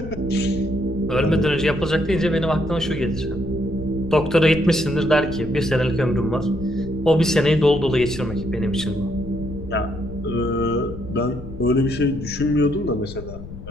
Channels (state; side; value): noise; left; rumble, 12 dB below the sound